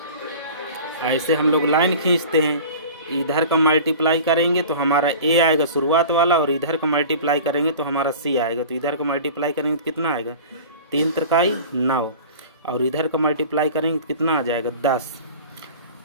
ऐसे हम लोग लाइन खींचते हैं, इधर का मल्टीप्लाई करेंगे तो हमारा ए आएगा शुरुआत वाला, और इधर का मल्टीप्लाई करेंगे तो हमारा सी आएगा। तो इधर का मल्टीप्लाई करेंगे तो कितना आएगा, 3 त्रिकाई 9, और इधर का मल्टीप्लाई करेंगे तो कितना आ जाएगा, 10।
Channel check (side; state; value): both; inverted; correlation -0.39